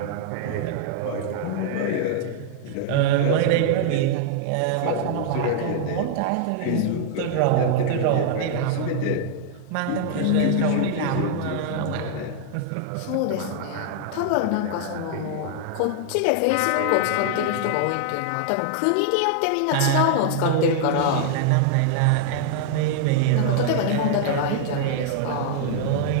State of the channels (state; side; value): different; both; correlation -0.01